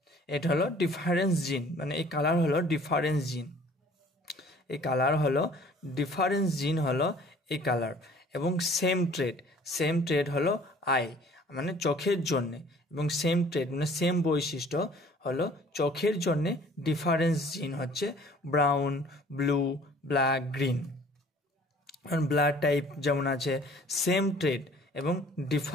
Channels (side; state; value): both; normal; correlation 0.52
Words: এটা হলো ডিফারেন্স জিন, মানে এই কালার হলো ডিফারেন্স জিন। এই কালার হলো ডিফারেন্স জিন হলো এই কালার। এবং সেম ট্রেড হলো আই, মানে চোখের জন্যে, এবং সেম ট্রেড মানে সেম বৈশিষ্ট্য হলো চোখের জন্যে ডিফারেন্স জিন হচ্ছে brown, blue, black, green. Blood type যেমন আছে সেম ট্রেড এবং